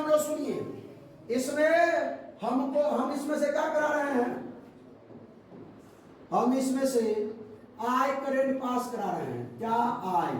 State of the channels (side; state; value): both; identical; correlation 1.00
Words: लोग सुनिए, इसमें हम इसमें से क्या करा रहे हैं, हम इसमें से आई करंट पास करा रहे हैं। क्या आई,